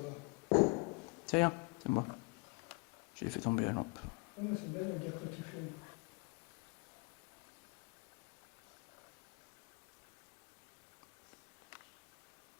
là. C'est rien, c'est moi. J'ai fait tomber la lampe. Oh, mais c'est belle la guerre que tu fais.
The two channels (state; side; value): quieter; right; 29.9 dB